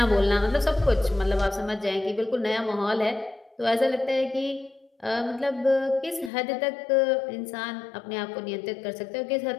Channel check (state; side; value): drops out; right; at 6.3 s